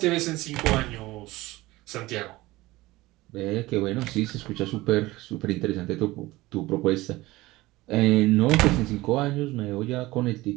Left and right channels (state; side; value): quieter; left; 19.2 dB